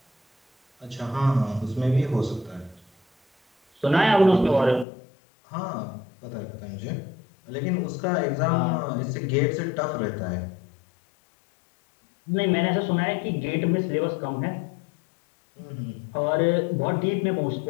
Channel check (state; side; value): drops out; right; at 4.9 s